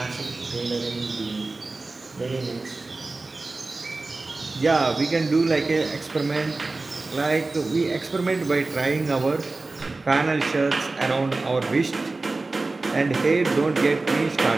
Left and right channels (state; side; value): quieter; left; 3.4 dB